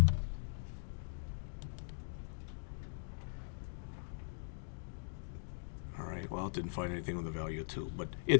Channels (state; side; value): silent; right; digital silence